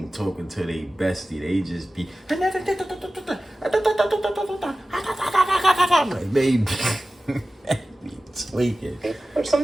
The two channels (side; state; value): both; normal; correlation 0.96